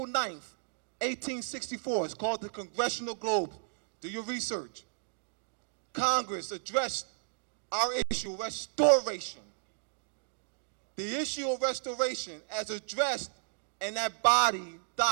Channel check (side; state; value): left; silent; digital silence